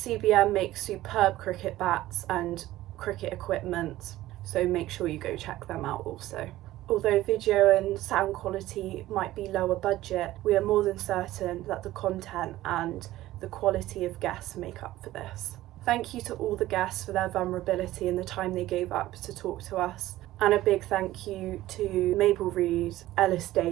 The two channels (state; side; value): quieter; left; 15.7 dB